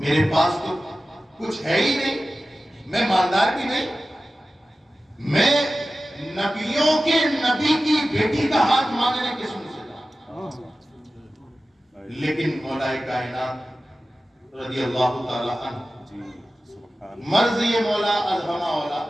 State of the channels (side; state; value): both; normal; correlation 0.95